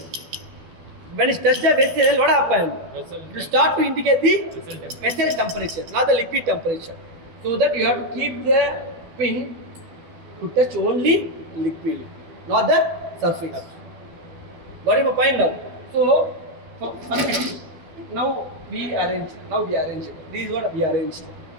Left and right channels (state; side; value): late; left; 12 ms